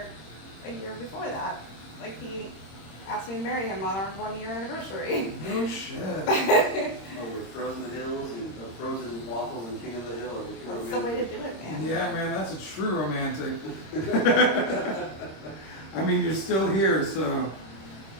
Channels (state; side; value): late; right; 26 ms